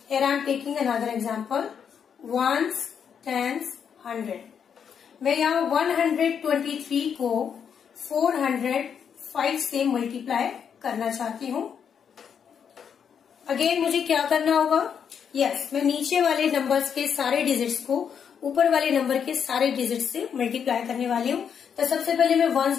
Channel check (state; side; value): quieter; right; 7.5 dB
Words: Here I am taking another example. Ones, tens, 100. मैं यहाँ 123 को 405 से multiply करना चाहती हूँ. Again मुझे क्या करना होगा? यस, मैं नीचे वाले नंबर्स के सारे डिजिट्स को ऊपर वाले नंबर के सारे डिजिट से मल्टीप्लाई करने वाली हूँ। तो सबसे पहले मैं वंस